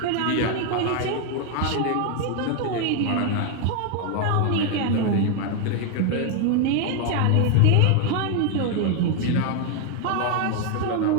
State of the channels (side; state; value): both; different; correlation 0.01